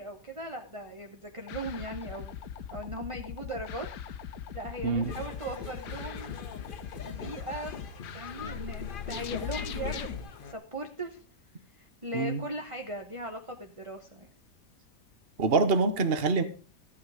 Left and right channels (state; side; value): normal; both; correlation -0.20